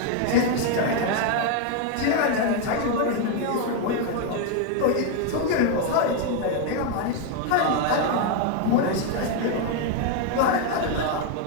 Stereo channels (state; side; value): different; both; correlation 0.01